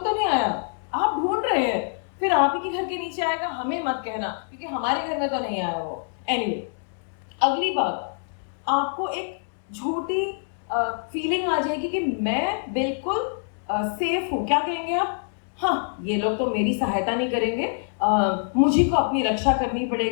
तो नहीं आया, आप ढूंढ रहे हैं, फिर आप ही के घर के नीचे आएगा, हमें मत कहना क्योंकि हमारे घर में तो नहीं आया वो। एनीवे, अगली बात, आपको एक झूठी फीलिंग आ जाएगी कि मैं बिल्कुल सेफ हूँ। क्या कहेंगे आप? हाँ, ये लोग तो मेरी सहायता नहीं करेंगे, मुझे को अपनी रक्षा करनी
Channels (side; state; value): right; silent; digital silence